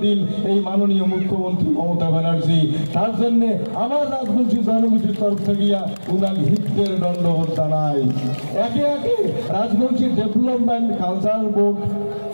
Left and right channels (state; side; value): inverted; both; correlation -1.00